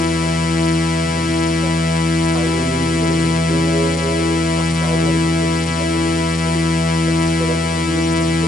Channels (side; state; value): both; normal; correlation 0.73